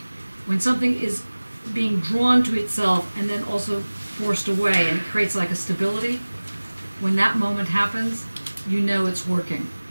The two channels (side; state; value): both; inverted; correlation -1.00